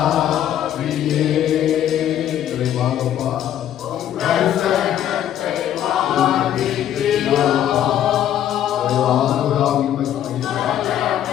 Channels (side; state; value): right; quieter; 10.9 dB